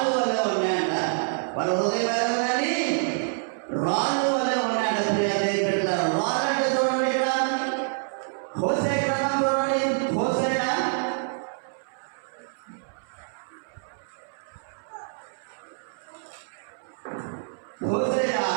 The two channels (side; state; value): left; silent; 60 dB below the other